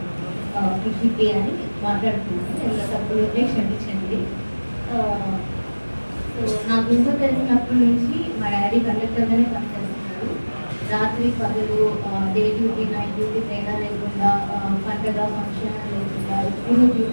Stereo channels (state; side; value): inverted; both; correlation -1.00